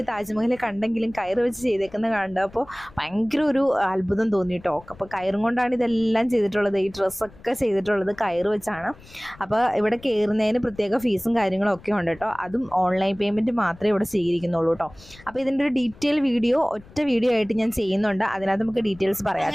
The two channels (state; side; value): noise; left; rumble, 22 dB below the sound